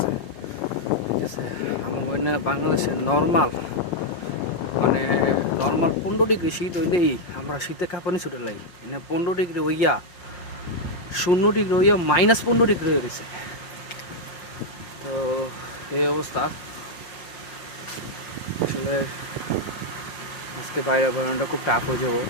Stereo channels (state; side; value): late; right; 5.7 ms